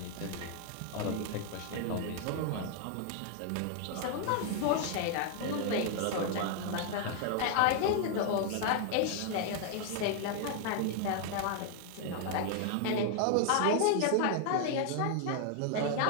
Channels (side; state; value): both; different; correlation 0.00